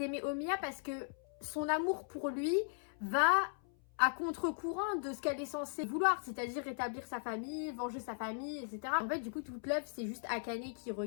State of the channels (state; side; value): silent; right; 53 dB below the other